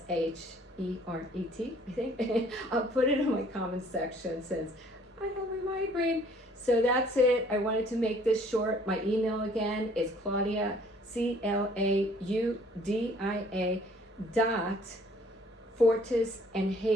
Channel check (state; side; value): normal; both; correlation 0.58